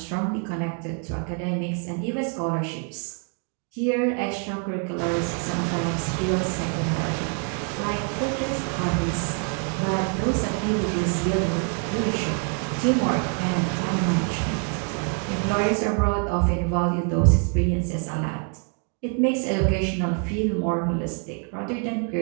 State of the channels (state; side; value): quieter; left; 39.1 dB